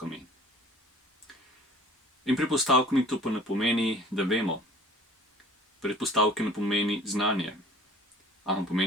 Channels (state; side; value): normal; both; correlation 0.49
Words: In predpostavkami to pa ne pomeni, da vemo. Predpostavke ne pomeni znanje, ampak